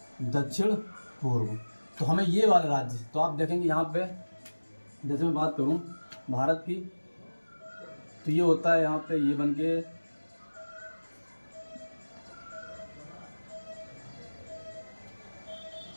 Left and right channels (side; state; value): both; inverted; correlation -1.00